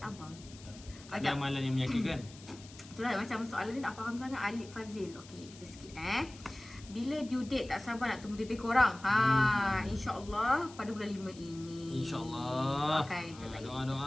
Tak ada amalan yang menyakitkan. Itulah macam soalan ni tak faham sangat. Alif Fazil. Okey, kita skip Bila due date, tak sabar nak tunggu baby korang. InsyaAllah pada bulan 5 ini. InsyaAllah.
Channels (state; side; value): noise; left; hiss, 19 dB below the sound